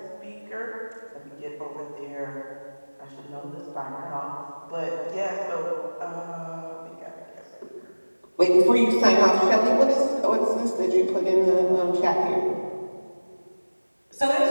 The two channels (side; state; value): both; inverted; correlation -1.00